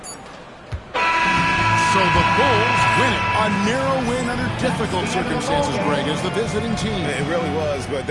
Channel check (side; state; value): both; identical; correlation 1.00